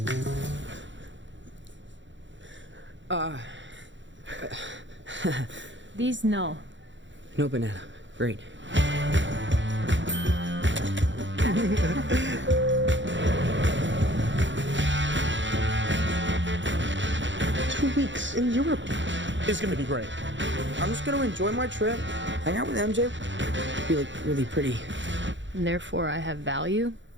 These no. No banana. Great. 2 weeks in Europe. It's gonna be great. I'm just gonna enjoy my trip, hang out with MJ, be like really pretty. And therefore I have value?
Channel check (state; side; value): late; left; 0.54 ms